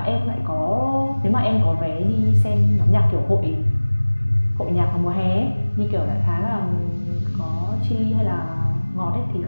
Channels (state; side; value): inverted; both; correlation -1.00